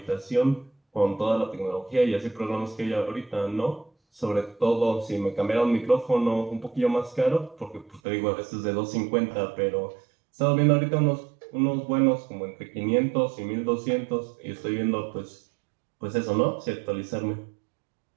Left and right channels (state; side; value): drops out; left; at 8.0 s